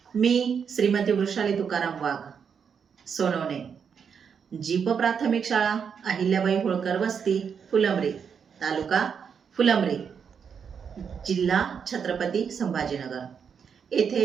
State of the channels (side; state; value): left; quieter; 6.8 dB